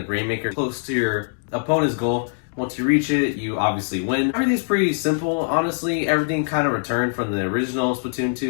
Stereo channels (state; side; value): silent; right; digital silence